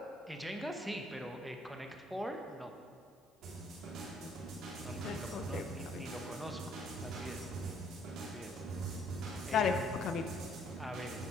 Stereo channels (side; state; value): both; normal; correlation 0.64